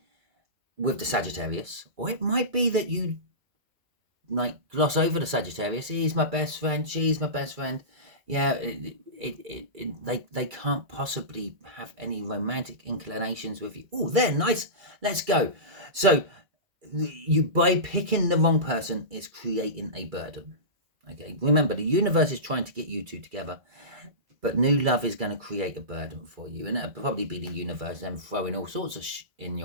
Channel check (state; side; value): late; left; 2.3 ms